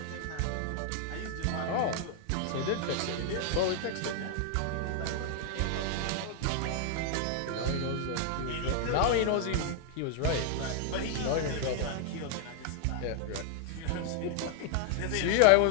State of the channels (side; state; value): both; different; correlation 0.00